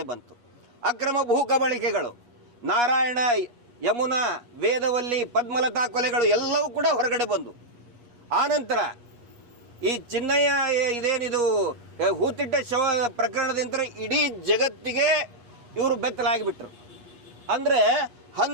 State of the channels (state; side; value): late; left; 8.3 ms